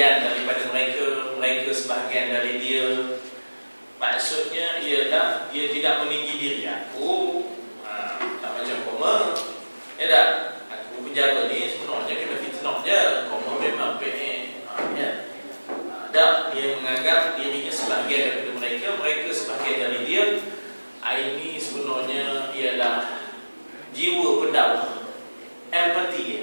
daripada mereka, mereka sebahagian dari dia. Maksudnya ialah dia tidak meninggi diri. Aku tak macam koma. Ya tak? Aku penjara ni sebenarnya kena fitnah je. Koma memang PN. Ya. Tak, dia menganggap dirinya sebahagian daripada mereka, mereka sebahagian dari dia. Ini sebenarnya ialah jiwa pendakwah, empathy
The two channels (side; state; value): both; inverted; correlation -1.00